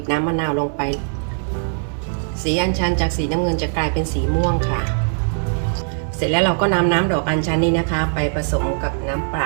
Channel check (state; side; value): silent; left; 65 dB below the other